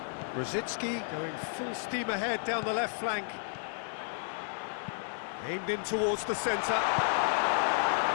Brzezinski going full steam ahead down the left flank. Aimed in towards the centre.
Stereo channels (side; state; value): right; silent; 56 dB below the other